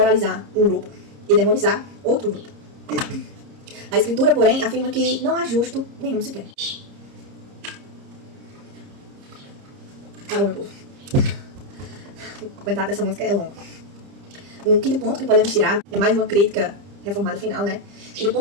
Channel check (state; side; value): late; left; 30 ms